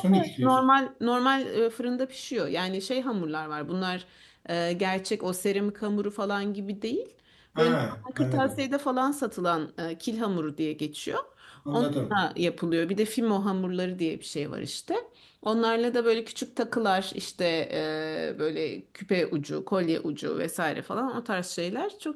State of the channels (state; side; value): identical; both; correlation 1.00